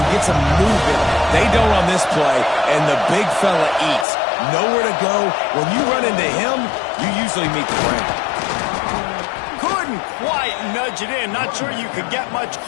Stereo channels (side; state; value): right; drops out; at 4.0 s